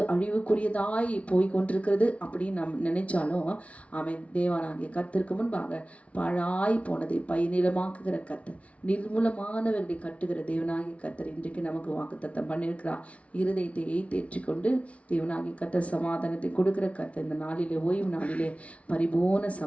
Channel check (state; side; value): late; right; 0.064 ms